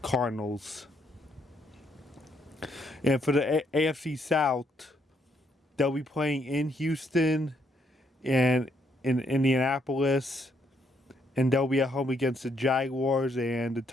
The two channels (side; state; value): both; normal; correlation 0.73